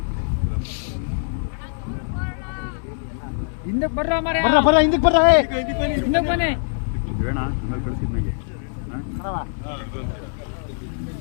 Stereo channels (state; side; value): silent; right; 60 dB below the other